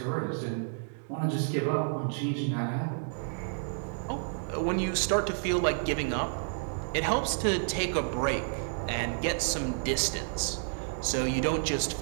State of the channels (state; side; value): silent; left; digital silence